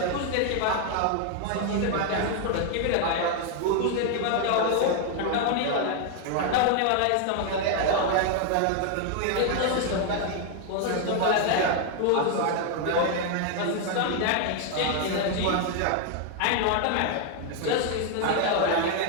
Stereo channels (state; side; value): different; both; correlation 0.00